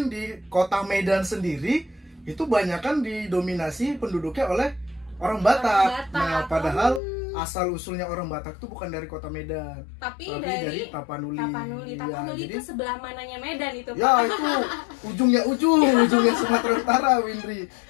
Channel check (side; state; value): right; drops out; at 7.0 s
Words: di kota Medan sendiri itu banyakan didominasi penduduknya oleh orang Batak. Batak. Nah, padahal asal usulnya orang Batak itu bukan dari kota Medan, Tapi tapi dari Tapanuli. Tapanuli. Iya, Tapanuli jadi itu sebelah mananya Medan itu Pak? ya itu ujungnya Sumatera Utara, Windri.